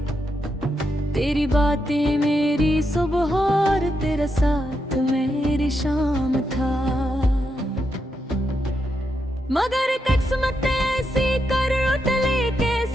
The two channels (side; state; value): both; normal; correlation 0.83